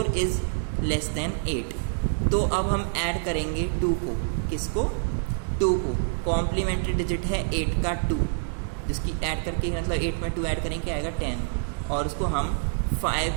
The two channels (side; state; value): left; silent; digital silence